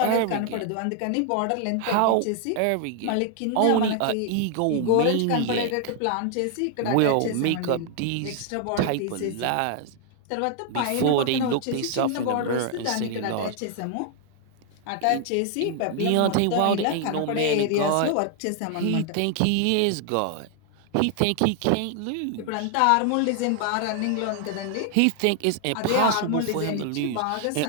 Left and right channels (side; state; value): both; different; correlation 0.00